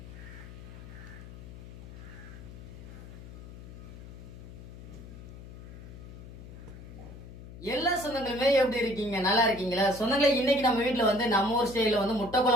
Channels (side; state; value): left; noise; hum, 14 dB below the sound